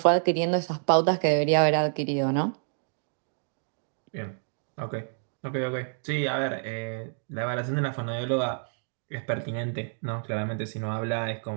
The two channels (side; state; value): left; silent; digital silence